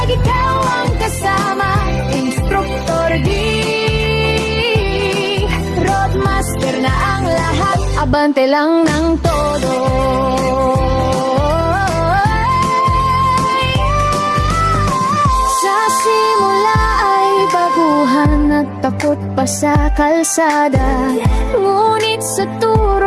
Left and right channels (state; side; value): identical; both; correlation 1.00